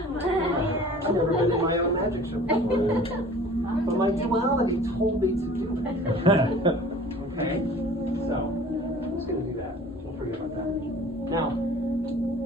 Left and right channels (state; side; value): normal; both; correlation 0.46